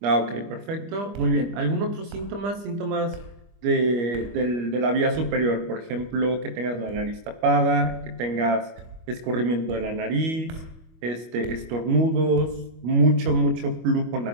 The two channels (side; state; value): left; late; 25 ms